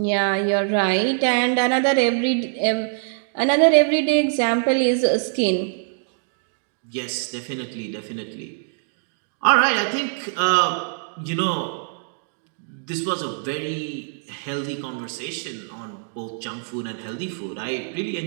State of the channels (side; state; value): left; silent; digital silence